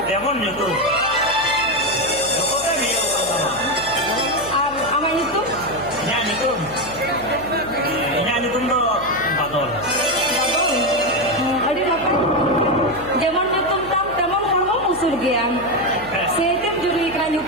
demon gitu. Pokoknya dia sama. Ama itu? Nyanyi tuh. Nyanyi tuh do badol. Bagus. Ada apa? Zaman itu teman kamu musuh dia. Setiap juri kena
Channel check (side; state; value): right; noise; hum, 18 dB below the sound